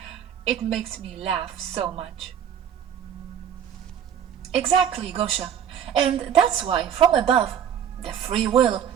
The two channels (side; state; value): left; quieter; 8.9 dB